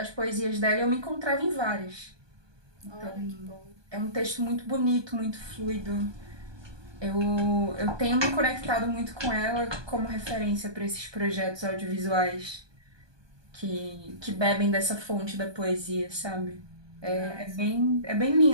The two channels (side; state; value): left; late; 1.2 ms